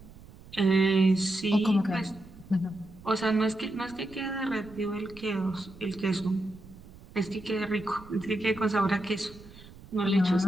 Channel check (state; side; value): noise; right; rumble, 20 dB below the sound